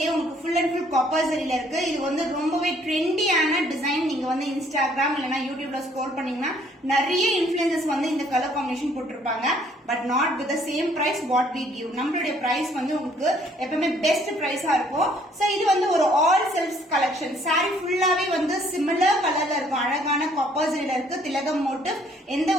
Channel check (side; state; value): both; normal; correlation 0.62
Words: உங்களுக்கு ஃபுல் அண்ட் ஃபுல் காப்பர் சரியில இருக்கு. இது வந்து ரொம்பவே ட்ரெண்டியான டிசைன். நீங்க வந்து இன்ஸ்டாகிராம் இல்லனா யூடியூப்ல ஸ்க்ரோல் பண்ணீங்கன்னா நிறைய இன்ஃப்ளூயன்சர்ஸ் வந்து இந்த கலர் காம்பினேஷன் போட்டுருப்பாங்க. But not with the same price what we give. நம்மளுடைய பிரைஸ் வந்து உங்களுக்கு எப்பவுமே பெஸ்ட் பிரைஸா இருக்கும். சோ இது வந்து ஒரு ஆல் செல்ஃப் கலெக்ஷன். சாரி ஃபுல்லாவே வந்து சிமிலர் கலர்ல இருக்கும். அழகான காப்பர் சரியில இருக்கு. திலகம் மோட்டிவ், எந்த